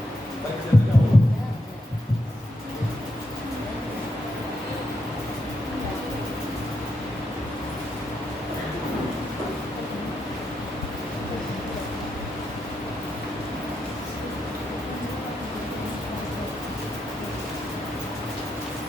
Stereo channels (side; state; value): both; normal; correlation 0.82